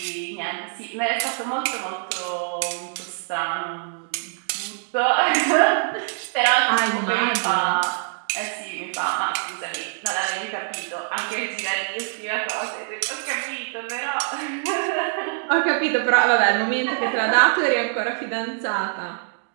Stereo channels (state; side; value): silent; left; digital silence